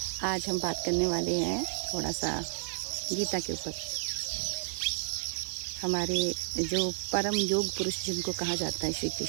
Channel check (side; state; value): left; silent; digital silence